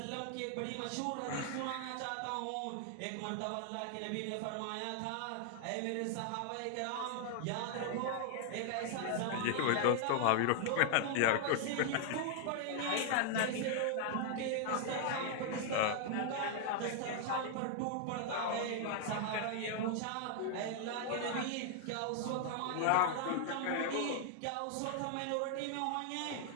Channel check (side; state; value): both; different; correlation 0.00